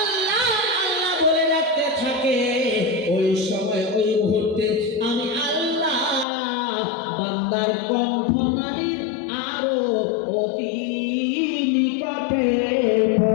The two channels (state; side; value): drops out; right; at 6.2 s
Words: আল্লাহ বলে রাখতে থাকে, ওই সময় ওই মুহূর্তে আমি আল্লাহ বান্দার কণ্ঠনালীর আরো অতি নিকটে